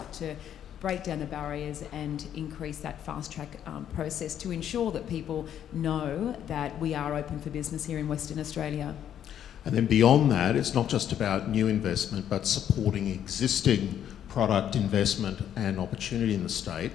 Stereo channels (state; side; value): quieter; right; 10.0 dB